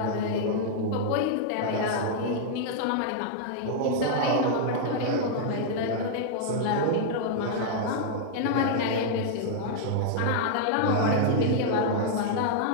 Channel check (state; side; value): different; both; correlation -0.01